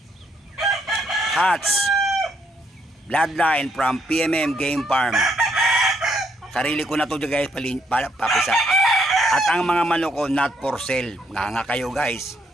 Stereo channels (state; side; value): normal; both; correlation 0.72